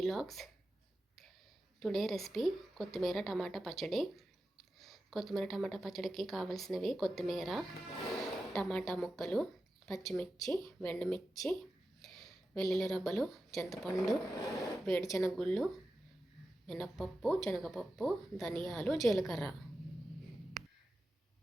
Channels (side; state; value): both; normal; correlation 0.92